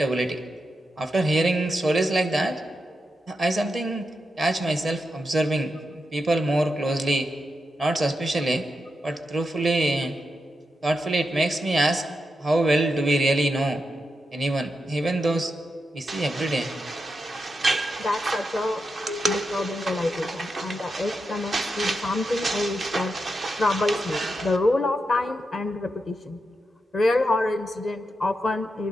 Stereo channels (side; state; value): both; normal; correlation 0.87